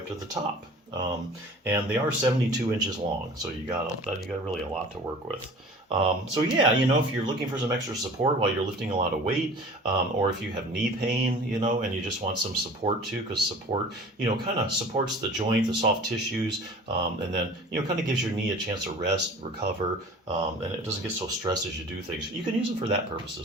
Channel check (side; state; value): both; normal; correlation 0.43